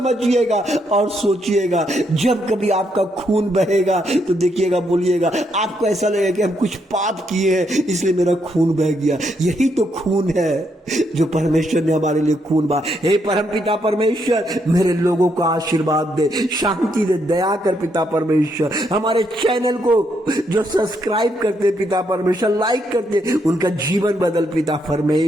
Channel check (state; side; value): normal; both; correlation 0.76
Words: और सोचिएगा, जब कभी आपका खून बहेगा तो देखिएगा, बोलिएगा, आपको ऐसा लगेगा कि हम कुछ पाप किए हैं इसलिए मेरा खून बह गया। यही तो खून है जो परमेश्वर ने हमारे लिए खून बहा। हे परमपिता परमेश्वर मेरे लोगों को आशीर्वाद दे, शांति दे, दया कर पिता परमेश्वर। हमारे चैनल को जो सब्सक्राइब करते पिता परमेश्वर, लाइक करते, उनका जीवन बदल पिता